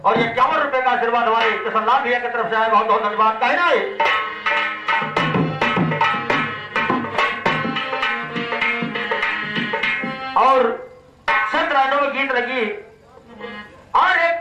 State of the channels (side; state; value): both; identical; correlation 1.00